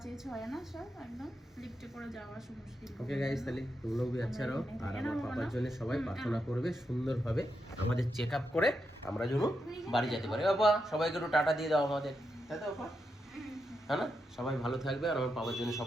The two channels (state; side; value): normal; both; correlation 0.84